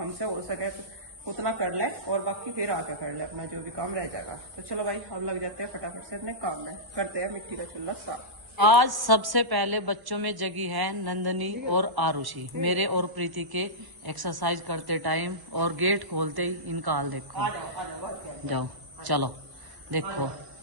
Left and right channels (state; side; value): late; left; 1.1 ms